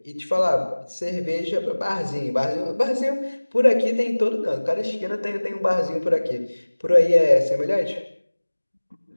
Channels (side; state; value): both; inverted; correlation -1.00